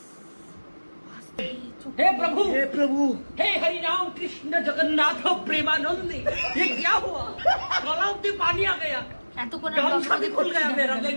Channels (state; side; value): inverted; both; correlation -1.00